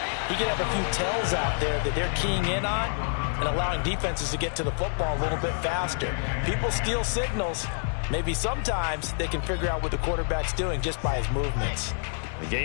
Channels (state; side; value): silent; right; 60 dB below the other